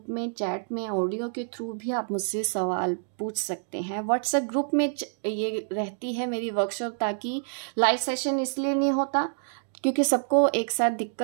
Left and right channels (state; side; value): silent; left; digital silence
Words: में चैट में ऑडियो के थ्रू भी आप मुझसे सवाल पूछ सकते हैं। व्हाट्सएप ग्रुप में ये रहती है मेरी वर्कशॉप, ताकि लाइव सेशन इसलिए नहीं होता क्योंकि सबको एक साथ